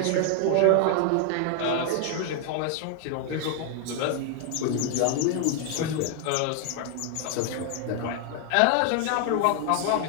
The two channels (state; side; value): different; both; correlation 0.00